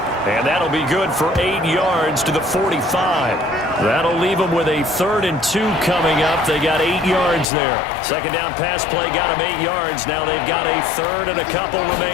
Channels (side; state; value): right; drops out; at 7.5 s